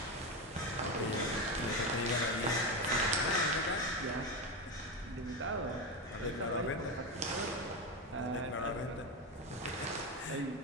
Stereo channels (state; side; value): normal; both; correlation 0.15